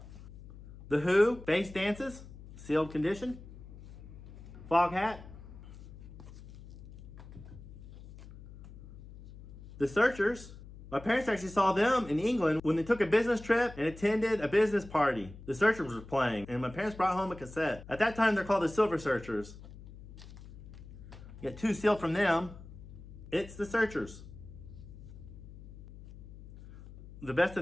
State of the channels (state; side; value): noise; left; hum, 16 dB below the sound